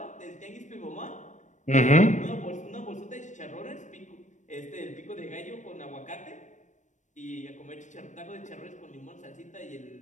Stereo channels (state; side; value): late; right; 0.35 ms